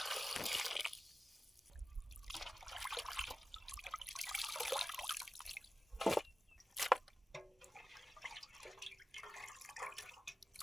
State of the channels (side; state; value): both; normal; correlation 0.95